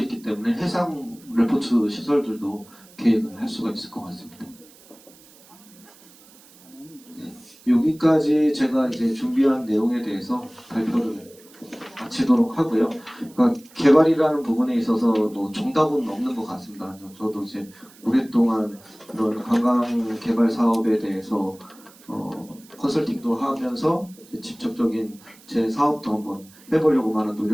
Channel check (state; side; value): noise; right; hiss, 25 dB below the sound